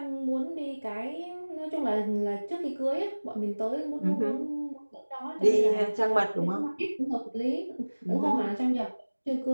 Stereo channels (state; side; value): inverted; both; correlation -1.00